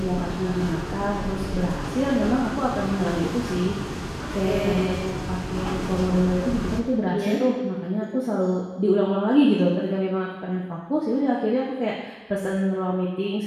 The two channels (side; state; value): both; identical; correlation 1.00